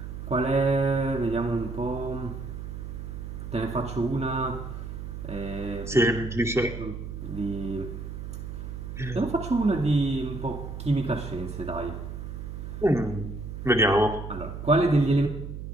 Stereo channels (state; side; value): noise; right; hum, 8 dB below the sound